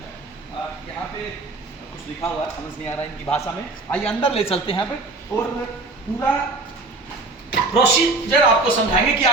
यहाँ पे कुछ लिखा हुआ है, समझ नहीं आ रहा है इनकी भाषा में। आइए अंदर ले चलते हैं यहाँ पे और पूरा प्रोसीजर आपको समझाएंगे कि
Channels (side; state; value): left; quieter; 3.4 dB